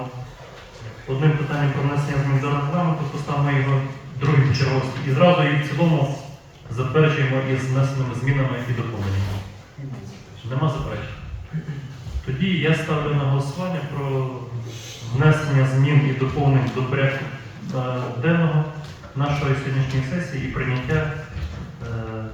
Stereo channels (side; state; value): both; identical; correlation 1.00